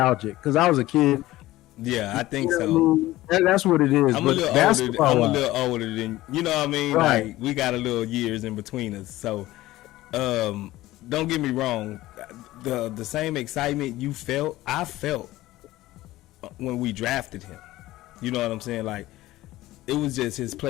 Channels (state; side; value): quieter; right; 16.8 dB